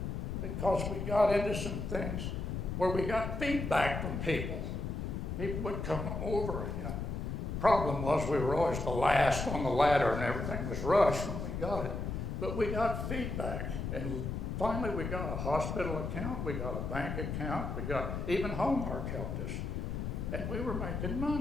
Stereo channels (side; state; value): left; noise; rumble, 3 dB below the sound